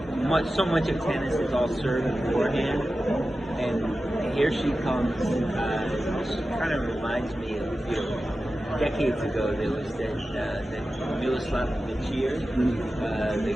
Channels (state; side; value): normal; both; correlation 0.94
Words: So much of tennis is all serve and forehand, and here she comes. She kind of reminds me of decades ago there was that Miroslav Vicir,